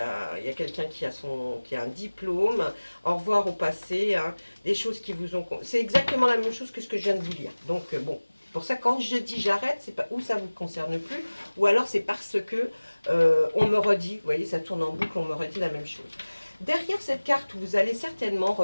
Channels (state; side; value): inverted; both; correlation -1.00